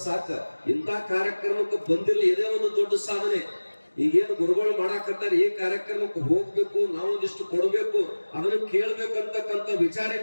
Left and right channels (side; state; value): both; inverted; correlation -1.00